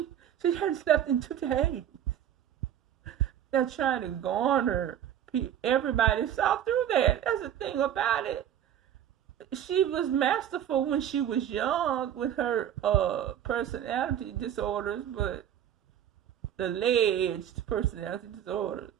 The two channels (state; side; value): quieter; left; 10.3 dB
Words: hadn't slept in 2 days. They're trying to garner everybody saw through that. That's the thing about it. She was masterful when she was young with her personality disorders, but alleged personality disorders.